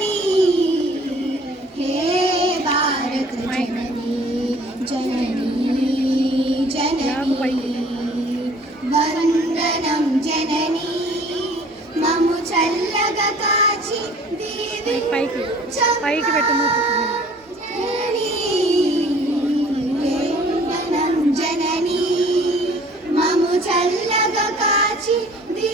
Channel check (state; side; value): normal; both; correlation 0.53